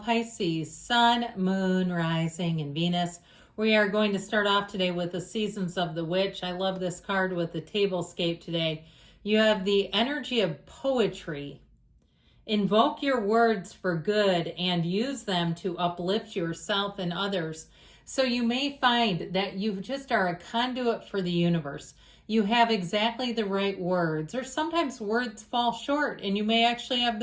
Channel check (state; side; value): identical; both; correlation 1.00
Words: Sun, Moon, Rising, and Venus. We are going to start off today with the Seasons of the Witch. I love this card with the tablescape today. You have the energy of poetry. Invoke your words for good and use them to uplift yourself and others. So you may find that you just are a conduit for the universe. You have exactly the right words, or sometimes words fall short, and you may actually have